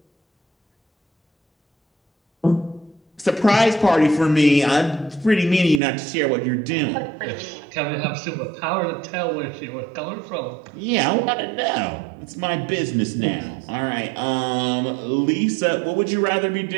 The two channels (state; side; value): drops out; left; at 5.8 s